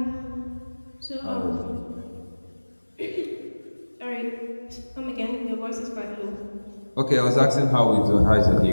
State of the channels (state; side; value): inverted; both; correlation -1.00